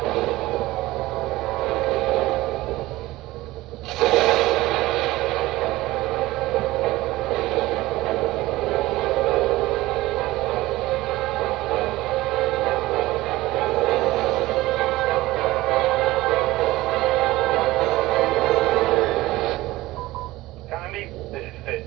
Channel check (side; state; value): left; quieter; 18.2 dB